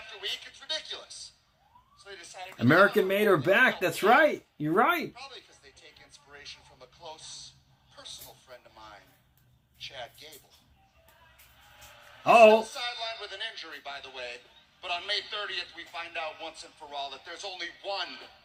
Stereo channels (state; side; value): identical; both; correlation 1.00